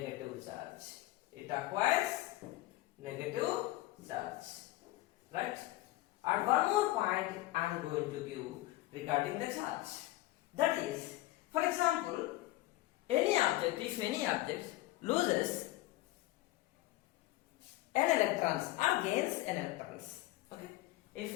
charge. It acquires negative charge. Right? And one more point I am going to give regarding the charge. That is, for example, if any object loses n electrons or gains n electrons, okay?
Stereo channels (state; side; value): quieter; right; 17.6 dB